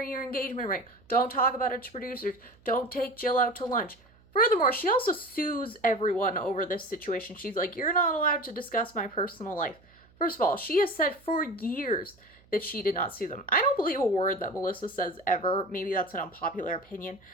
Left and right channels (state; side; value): noise; right; hum, 29 dB below the sound